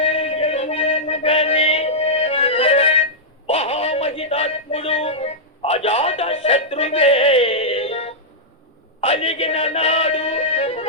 మహామహితాత్ముడు అజాత శత్రువే అలిగిన నాడు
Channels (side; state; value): both; normal; correlation -0.10